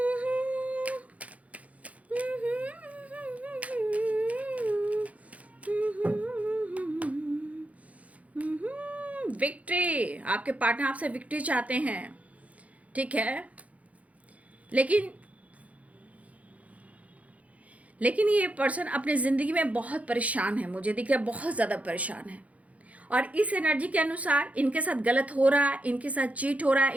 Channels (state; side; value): late; left; 0.067 ms